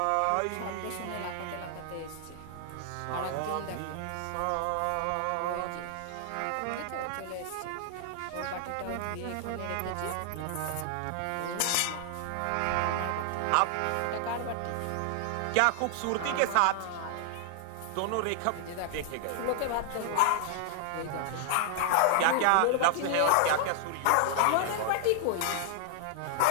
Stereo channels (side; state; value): both; different; correlation 0.00